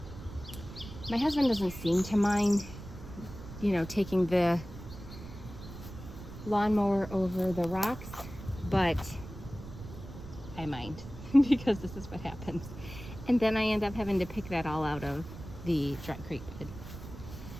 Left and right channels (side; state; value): right; noise; rumble, 13 dB below the sound